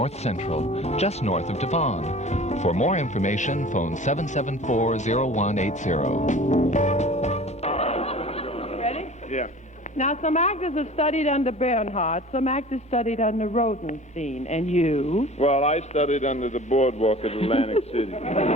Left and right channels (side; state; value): both; normal; correlation 0.42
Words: Central, just north of Devon. For more information, phone 774-0180. Ready? Yeah. Now, some actors have studied under Bernhardt, some actors studied under Rodenstein, and you? Well, I studied under the boardwalk at Atlantic City.